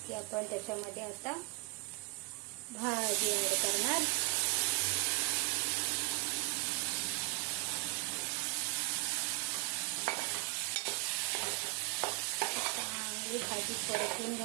की आपण त्याच्यामध्ये आता भाजी ॲड करणार. चांगली भाजी परतून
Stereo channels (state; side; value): quieter; left; 28.8 dB